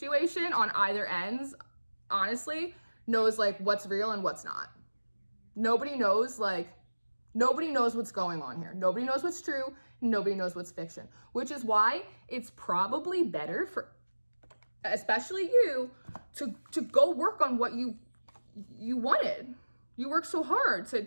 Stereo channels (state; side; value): inverted; both; correlation -1.00